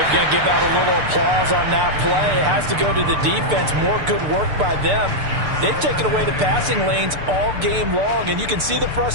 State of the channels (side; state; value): left; late; 6.7 ms